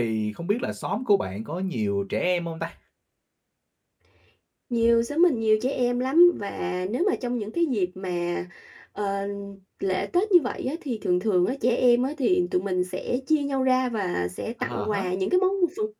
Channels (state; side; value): identical; both; correlation 1.00